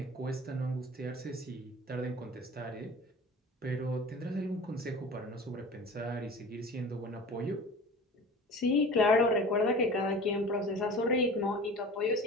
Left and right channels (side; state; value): both; normal; correlation 0.39